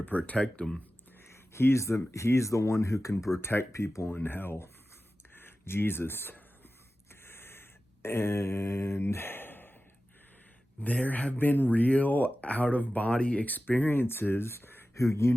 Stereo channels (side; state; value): both; normal; correlation 0.95